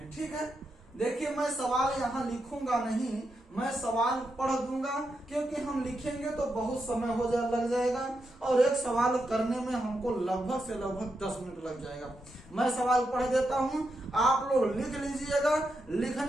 ठीक है, देखिए मैं सवाल यहाँ लिखूंगा नहीं, मैं सवाल पढ़ दूंगा, क्योंकि हम लिखेंगे तो बहुत समय लग जाएगा और एक सवाल करने में हमको लगभग से लगभग 10 मिनट लग जाएगा। मैं सवाल पढ़ देता हूँ, आप लोग लिख लीजिएगा,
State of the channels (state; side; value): normal; both; correlation 0.85